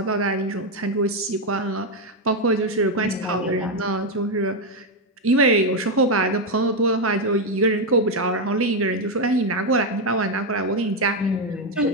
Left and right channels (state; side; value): normal; both; correlation 0.05